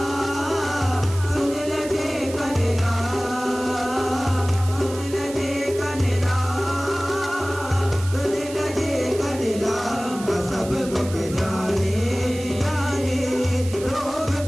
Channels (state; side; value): noise; right; hiss, 14 dB below the sound